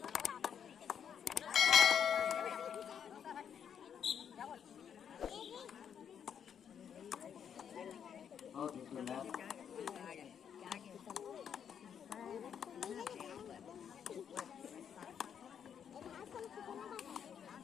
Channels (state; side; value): quieter; right; 8.1 dB